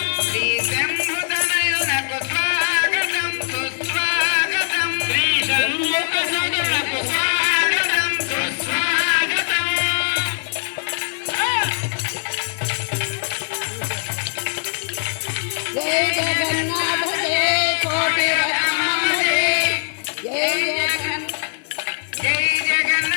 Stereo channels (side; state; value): right; silent; digital silence